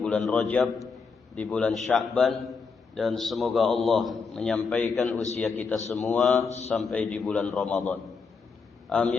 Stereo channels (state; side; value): quieter; right; 5.0 dB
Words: Rajab, di bulan Sya'ban, dan semoga Allah menyampaikan usia kita semua sampai di bulan Ramadan.